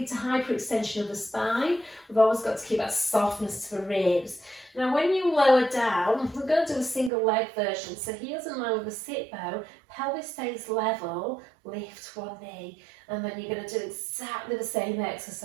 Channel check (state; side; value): drops out; left; at 7.1 s